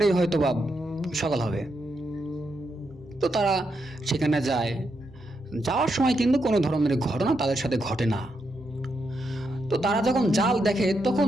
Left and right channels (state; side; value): normal; both; correlation 0.82